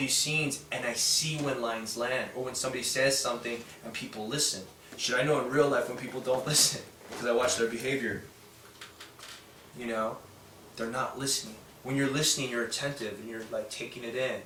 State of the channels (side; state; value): both; identical; correlation 1.00